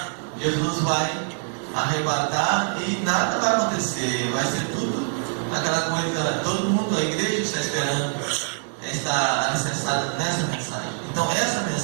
Jesus vai arrebatar e nada vai acontecer, vai ser tudo aquela coisa, todo mundo, a igreja está esperando, está alicerçada nessa mensagem. Então essa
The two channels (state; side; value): silent; left; 62 dB below the other